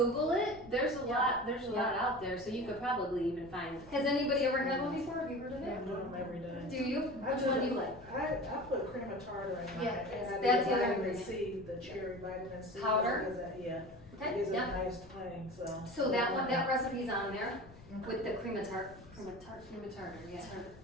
it, there's a lot Yeah. out there, so you could probably even find. Has anybody ever had one before, have you heard of I it? put them every day. Do you? Which one do you like? I put cream of tartar in mine, Yeah, and I that's did the other vitamin ingredient. C, the cherry vitamin C. Powder? because that- Yeah, Okay, it gives it a yeah. nice twang, so. So that one, that recipe's on there with the cream of tartar,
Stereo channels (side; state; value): left; noise; rumble, 21 dB below the sound